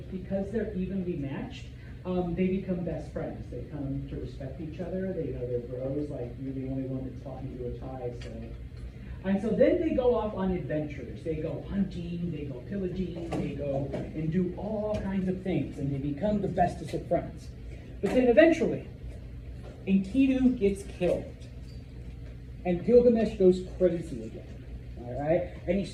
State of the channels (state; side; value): identical; both; correlation 1.00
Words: because they're evenly matched, they become best friends. They come to respect each other. They know they're bros, like you're the only one that's talking to a tie. And so then they go off on adventures. They go hunting, they go pillaging, they go and do all kinds of things, and they become the bestest of friends. But then eventually, Enkidu gets killed, and Gilgamesh goes crazy again. All right, and he